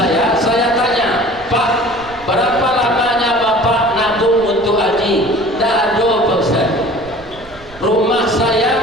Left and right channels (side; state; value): right; noise; rumble, 21 dB below the sound